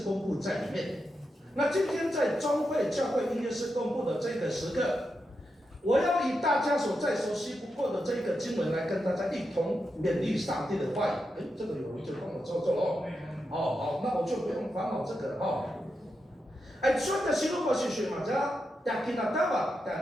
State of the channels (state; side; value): normal; both; correlation 0.86